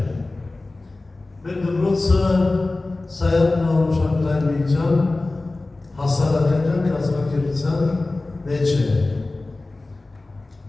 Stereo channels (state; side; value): quieter; right; 3.1 dB